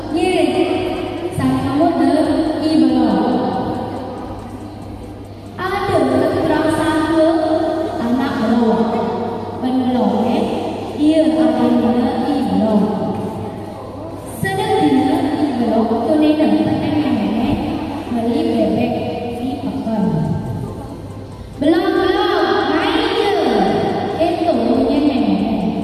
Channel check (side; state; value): both; identical; correlation 1.00